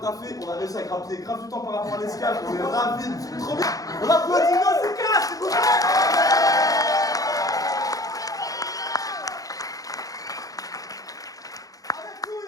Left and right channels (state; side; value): late; right; 0.17 ms